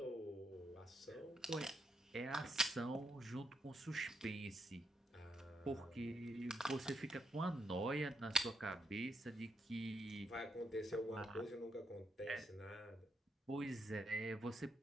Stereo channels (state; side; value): normal; both; correlation 0.80